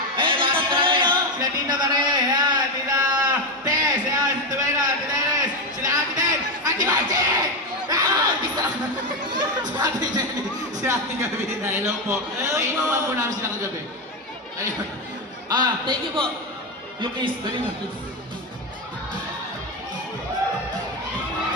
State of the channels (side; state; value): both; normal; correlation 0.11